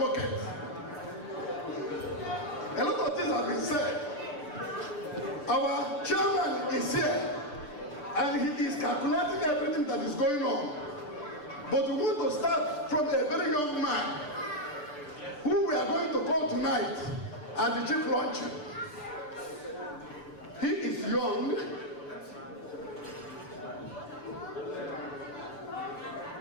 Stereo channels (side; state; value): right; late; 6.8 ms